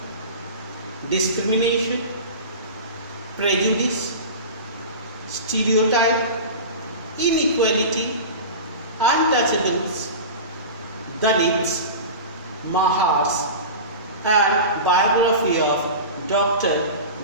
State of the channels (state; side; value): inverted; both; correlation -0.30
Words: discrimination, prejudice, stereotype, inequality, untouchables, Dalits, Mahars, and biography of Dr.